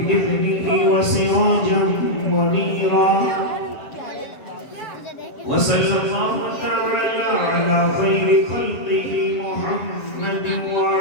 وسراجا منيرا وصلى الله تعالى على خير خلقه محمد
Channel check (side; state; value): right; late; 7.4 ms